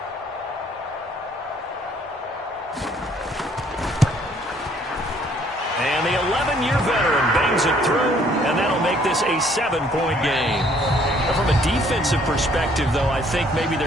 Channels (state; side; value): normal; both; correlation 0.62